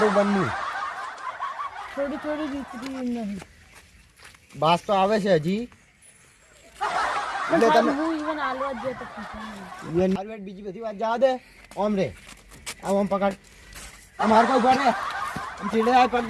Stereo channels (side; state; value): both; identical; correlation 1.00